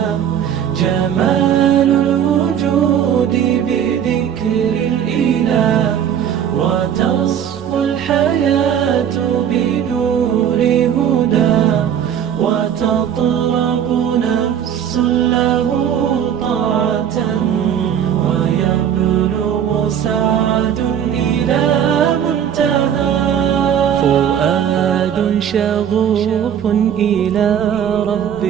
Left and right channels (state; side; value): quieter; left; 9.0 dB